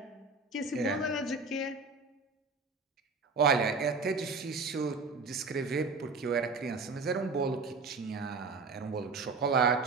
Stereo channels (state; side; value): quieter; left; 4.2 dB